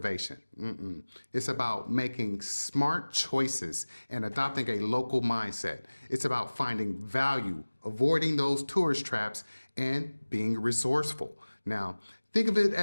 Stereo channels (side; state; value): both; inverted; correlation -1.00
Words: It's about making smart choices and adopting a local mindset. It's about finding value, avoiding those tourist traps, and being resourceful. Now, think of it